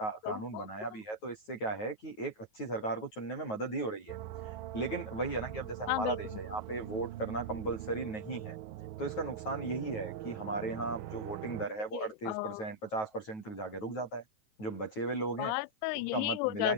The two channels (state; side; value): late; right; 9.3 ms